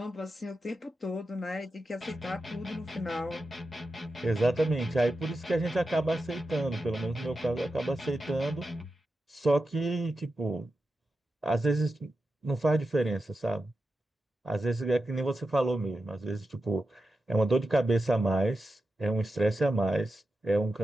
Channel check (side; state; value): both; normal; correlation 0.90